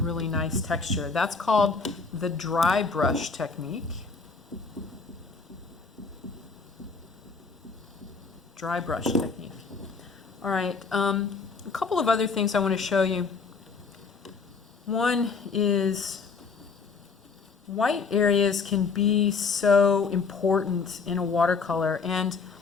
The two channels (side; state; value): right; quieter; 4.7 dB